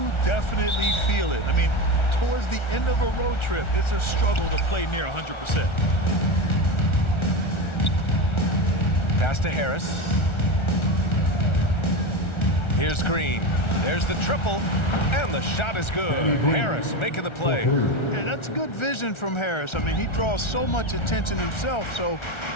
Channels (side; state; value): right; late; 1.4 ms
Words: definitely feel it. I mean, towards the end of a road trip, it's a struggle to play near 100%. Pass to Harris. Here's Green. There's the triple, and the shot is good. Harris making the play. Yeah, that's good vision from Harris. I mean, he draws so much attention himself, so